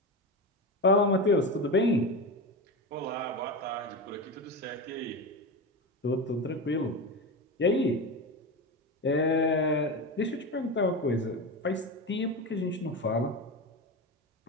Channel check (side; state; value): both; normal; correlation 0.21